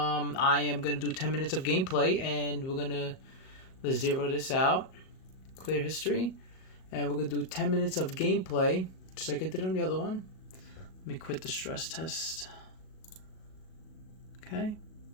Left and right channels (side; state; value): right; late; 38 ms